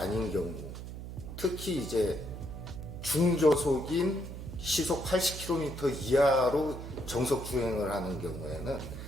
경우, 특히 이제 중저속인 시속 80km 이하로 정석 주행을 하는 경우에는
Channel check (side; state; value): right; noise; hum, 9 dB below the sound